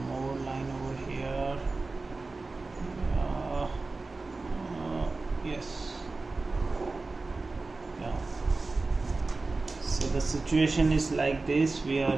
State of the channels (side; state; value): left; quieter; 3.6 dB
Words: more line over here. Yes, yeah. So the situation is like this. We are